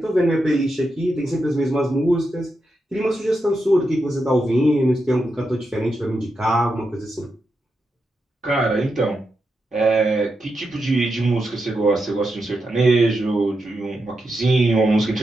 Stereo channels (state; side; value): normal; both; correlation 0.86